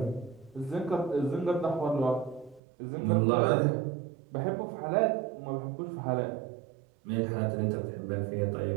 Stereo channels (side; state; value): left; drops out; at 2.6 s